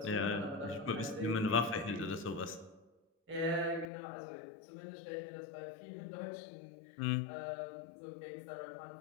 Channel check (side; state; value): right; drops out; at 3.9 s